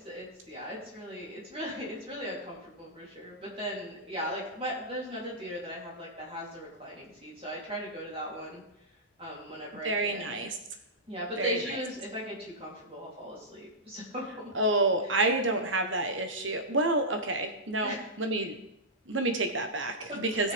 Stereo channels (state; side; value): normal; both; correlation -0.13